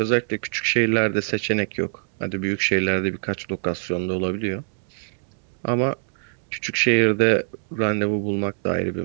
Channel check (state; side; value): silent; left; digital silence